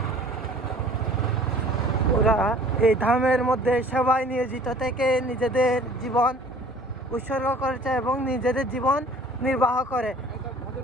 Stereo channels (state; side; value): normal; both; correlation 0.51